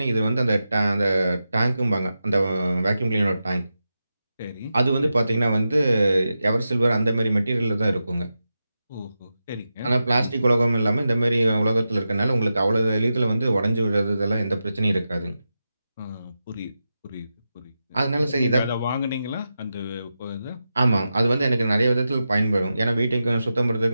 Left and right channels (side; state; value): both; inverted; correlation -0.90